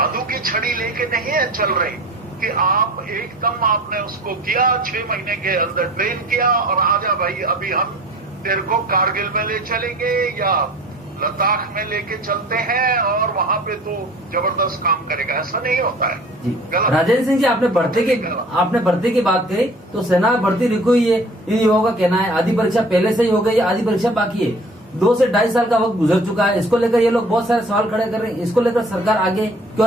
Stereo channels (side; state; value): both; normal; correlation 0.46